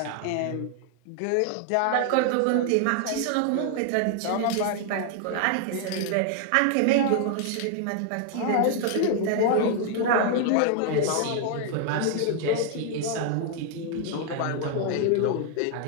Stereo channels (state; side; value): different; both; correlation 0.00